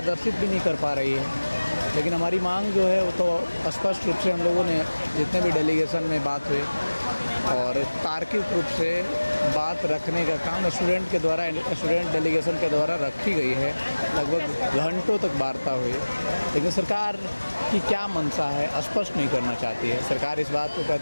भी नहीं कर पा रही है। लेकिन हमारी मांग जो है वो तो स्पष्ट रूप से हम लोगों ने जितने भी डेलीगेशन में बात हुई, और तार्किक रूप से बात रखने का काम स्टूडेंट डेलीगेशन के द्वारा रखी गई है। लगभग घंटों तक वार्ता हुई, लेकिन सरकार की क्या मंशा है स्पष्ट नहीं करना चाहती है। सरकार इस बात को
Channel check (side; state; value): both; inverted; correlation -1.00